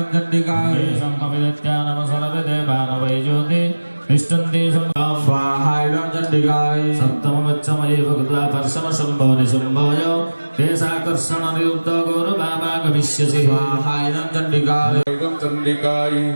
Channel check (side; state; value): both; inverted; correlation -1.00